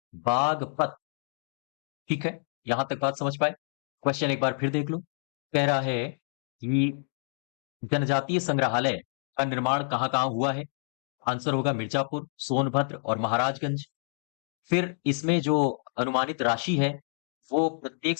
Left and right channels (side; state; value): right; silent; digital silence